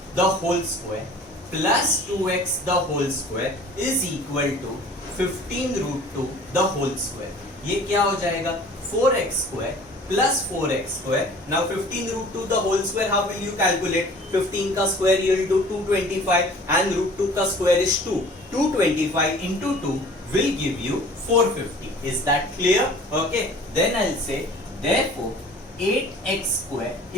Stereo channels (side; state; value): both; normal; correlation 0.47